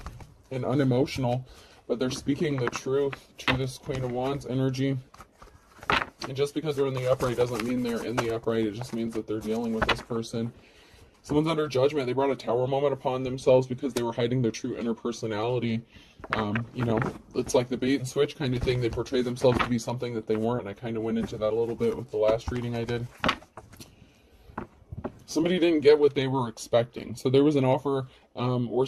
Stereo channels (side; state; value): both; identical; correlation 1.00